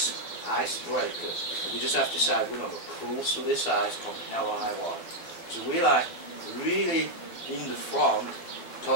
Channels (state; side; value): late; right; 12 ms